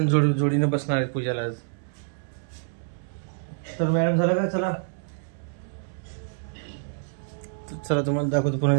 जोडीने बसणार आहेत पूजाला आज। तर मॅडम झालं का? चला तुम्हाला दाखवतो पुन्हा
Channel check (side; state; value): left; silent; 60 dB below the other